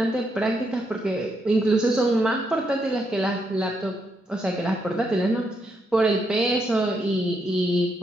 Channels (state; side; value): normal; both; correlation 0.79